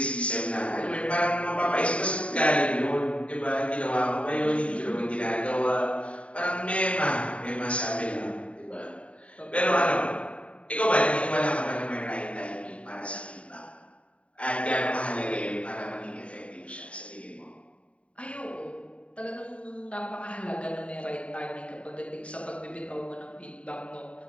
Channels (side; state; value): right; late; 0.063 ms